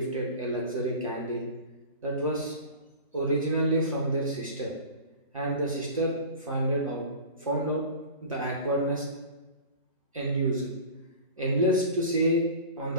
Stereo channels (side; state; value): both; inverted; correlation -0.36